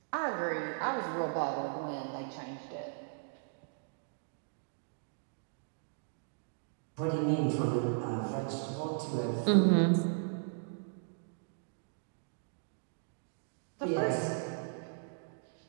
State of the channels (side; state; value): left; silent; digital silence